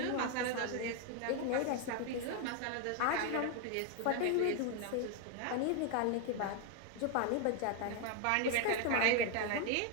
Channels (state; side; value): different; both; correlation 0.01